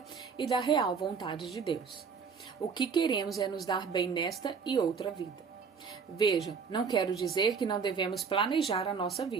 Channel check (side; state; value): left; quieter; 5.9 dB